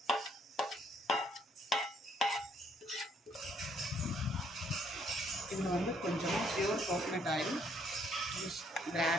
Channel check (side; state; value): both; normal; correlation 0.68